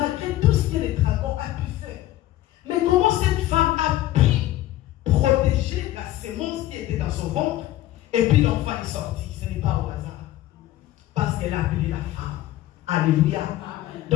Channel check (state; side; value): quieter; right; 14.8 dB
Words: tout ce que les dragons ont pu faire, mais comment cette femme a pu protéger la sémence qui était dans son ventre et puis l'enfant est sorti. Ce n'est pas au hasard. Parce qu'elle a appelé la femme. Alléluia. Amen.